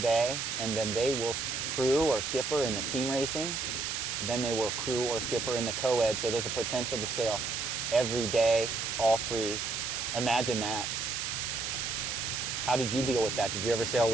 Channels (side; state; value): right; noise; hiss, 2 dB below the sound